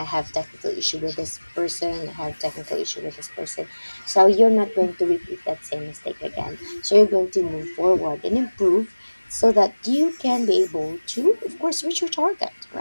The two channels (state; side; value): inverted; both; correlation -1.00